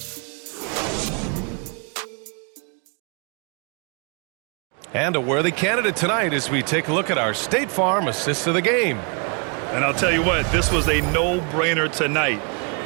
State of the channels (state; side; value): quieter; left; 36.4 dB